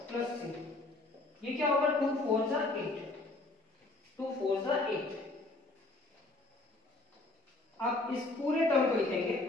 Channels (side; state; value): right; quieter; 3.1 dB